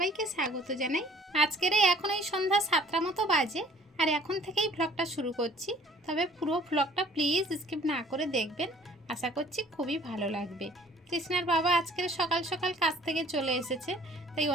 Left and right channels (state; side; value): normal; both; correlation 0.55